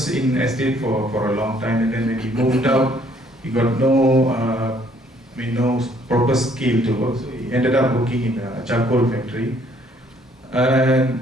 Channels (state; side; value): normal; both; correlation 0.64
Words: in estate for a long time, and then when he moved out, he got no proper skill to work. So he ended up working in a charcoal factory.